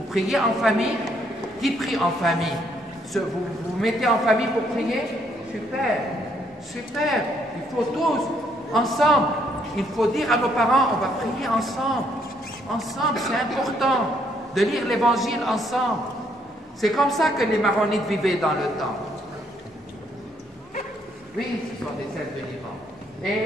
priez en famille. Qui prie en famille? Vous mettez en famille pour prier? Super, super. Il faut tous, ensemble. Il faut dire à nos parents, on va prier ensemble. Ensemble, c'est important de lire l'Évangile ensemble. C'est comme ça que les maronites vivaient dans le temps. Oui, ce sont des celles de Liban.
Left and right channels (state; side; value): normal; both; correlation 0.70